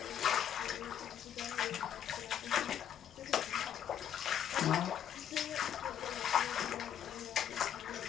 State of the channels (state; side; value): quieter; right; 9.7 dB